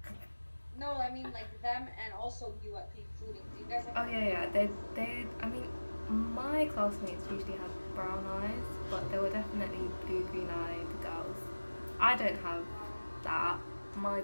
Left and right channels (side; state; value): both; inverted; correlation -1.00